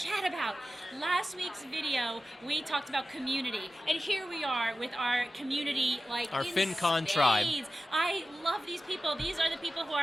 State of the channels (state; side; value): normal; both; correlation 0.94